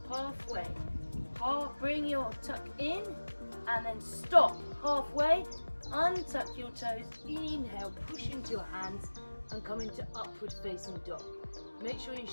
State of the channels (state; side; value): inverted; both; correlation -1.00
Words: halfway. Bring your tuck in and then stop halfway, untuck your toes, inhale, push into your hands and come into upward facing dog. Make sure your